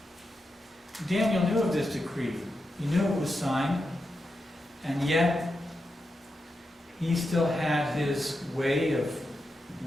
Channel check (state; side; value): normal; both; correlation 0.87